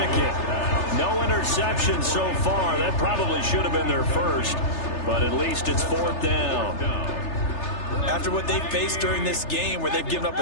it. No interception so far. That probably should have been their first. But at least it's 4th down. After what they've faced during this game where they've given up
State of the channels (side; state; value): right; late; 3.3 ms